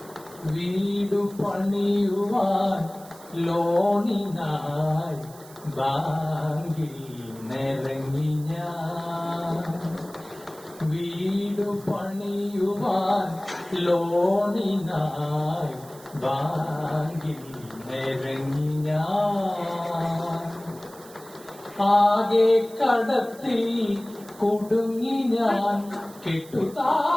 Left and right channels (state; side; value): noise; right; hiss, 21 dB below the sound